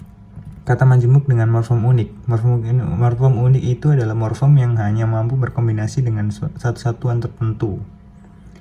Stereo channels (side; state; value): both; identical; correlation 1.00